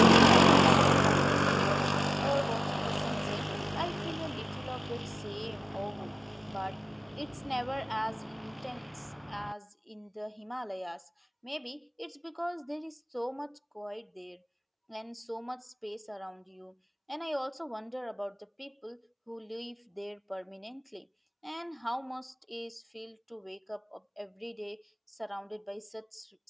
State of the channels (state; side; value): identical; both; correlation 1.00